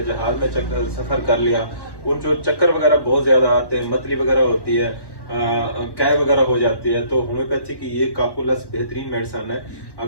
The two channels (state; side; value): late; right; 1.1 ms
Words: जहाज में सफर कर लिया, उन जो चक्कर वगैरह बहुत ज्यादा आते हैं, मतली वगैरह होती है, कैब वगैरह हो जाती है, तो होम्योपैथी की ये काकुलस बेहतरीन मेडिसिन है।